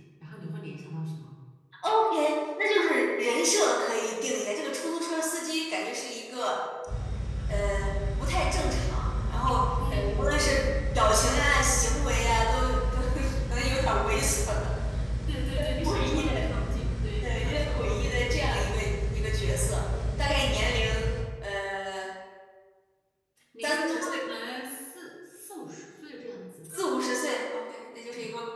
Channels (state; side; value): identical; both; correlation 1.00